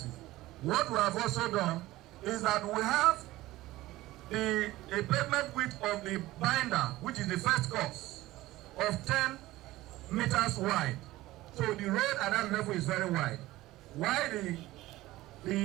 What we have also done is that we have a pavement width of the binder, which is the first course, of 10 meters wide. So the road at that level is very wide. While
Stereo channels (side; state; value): left; quieter; 17.3 dB